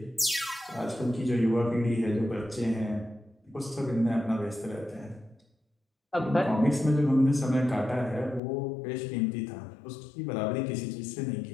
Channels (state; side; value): drops out; right; at 8.4 s